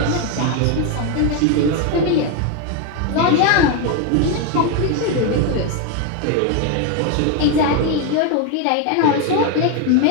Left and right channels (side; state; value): both; different; correlation 0.02